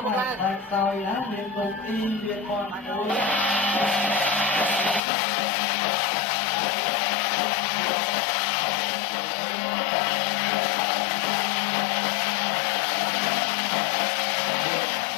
ែក្រោយណាមានគុំទីមានមន់មួយ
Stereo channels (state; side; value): drops out; right; at 5.0 s